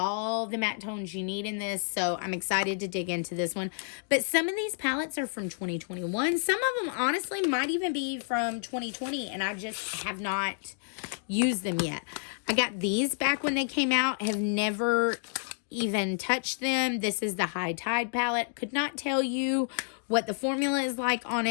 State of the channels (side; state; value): right; silent; digital silence